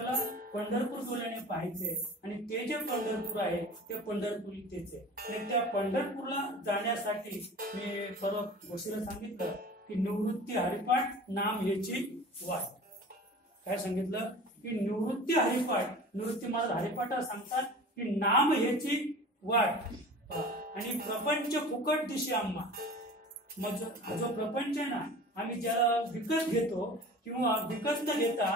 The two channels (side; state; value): both; normal; correlation 0.39